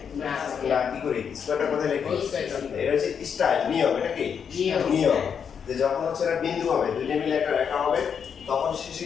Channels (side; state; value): right; quieter; 7.2 dB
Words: না কি করি স্কয়ারটা কোথায় লিখি এটা হচ্ছে স্টাইল নিয়ম এটা কি নিয়ম যে যখন হচ্ছে একটা বিন্দু হবে দুইটা মিলে একটা রেখা হবে তখন শেষে